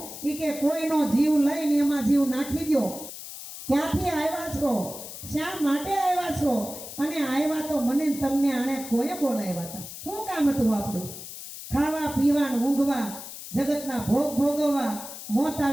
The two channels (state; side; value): noise; left; hiss, 11 dB below the sound